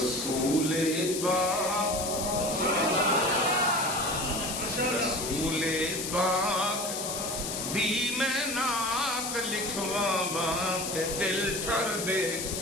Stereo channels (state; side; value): noise; left; hiss, 4 dB below the sound